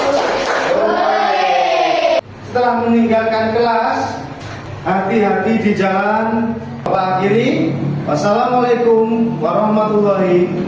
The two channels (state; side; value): identical; both; correlation 1.00